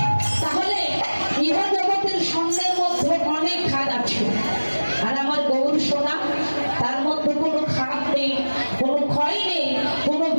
তাহলে ইহ জগতের স্বর্ণের মধ্যে অনেক খাদ আছে। আর আমার গৌর সোনা, তার মধ্যে কোনো খাদ নেই, কোনো ক্ষয় নেই, কোনো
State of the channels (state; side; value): inverted; both; correlation -1.00